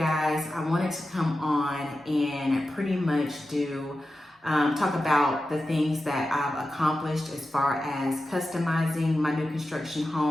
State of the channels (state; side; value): normal; both; correlation 0.92